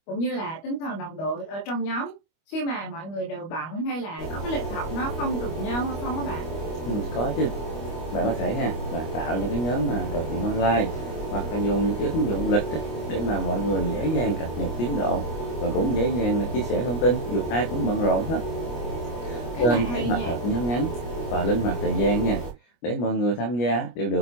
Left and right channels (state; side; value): late; right; 25 ms